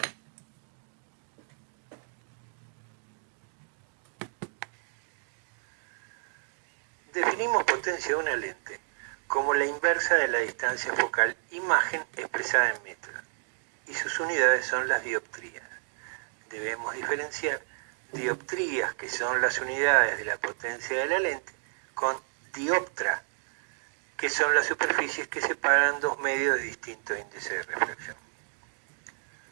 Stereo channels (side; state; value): left; silent; digital silence